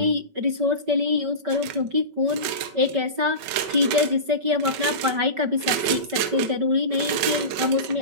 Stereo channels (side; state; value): left; late; 5.3 ms